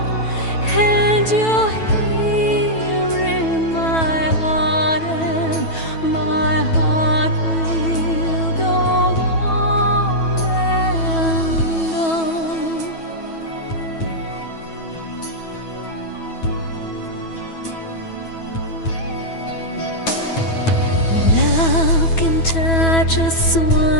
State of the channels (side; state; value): right; late; 9.2 ms